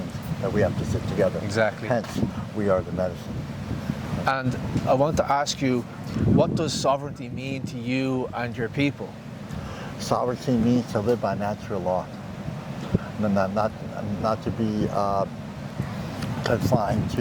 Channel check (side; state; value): both; identical; correlation 1.00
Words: that we have to sit together. Exactly. Hence, we are the medicine. And I want to ask you, what does sovereignty mean to you and your people? Sovereignty means to live by natural law, not to be confined